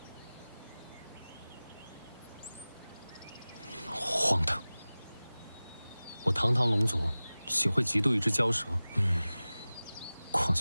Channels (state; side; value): inverted; both; correlation -0.98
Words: 荒唐！我堂堂龙族，岂会嫉妒一只蛟蛇？况